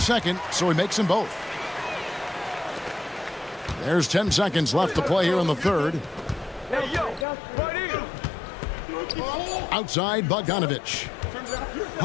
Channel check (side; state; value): right; drops out; at 7.2 s